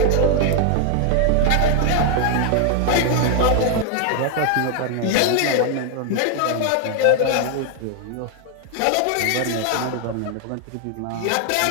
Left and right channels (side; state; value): both; different; correlation 0.00